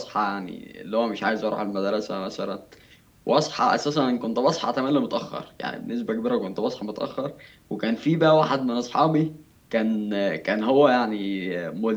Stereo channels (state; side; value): identical; both; correlation 1.00